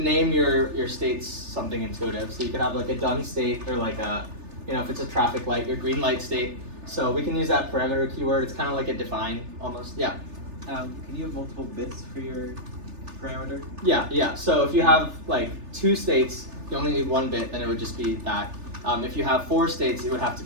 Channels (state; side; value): late; left; 3.4 ms